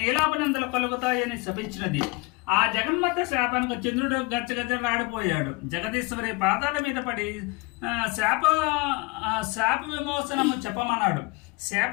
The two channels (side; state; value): right; quieter; 25.8 dB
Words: కలుగుతాయని శపించినది. ఆ జగన్మాత శాపానికి చంద్రుడు గచ్చగచ్చలాడిపోయాడు. జగదీశ్వరి పాదాల మీద పడి శాప విమోచనము చెప్పమన్నాడు.